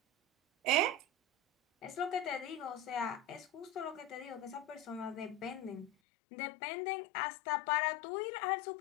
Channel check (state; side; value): drops out; right; at 5.9 s